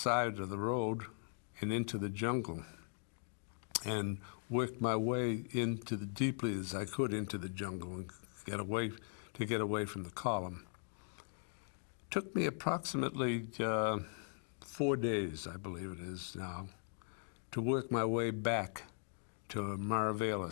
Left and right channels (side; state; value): right; silent; 51 dB below the other